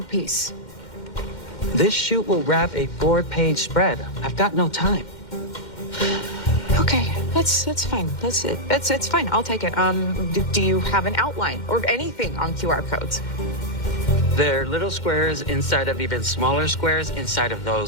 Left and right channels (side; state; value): right; late; 2.1 ms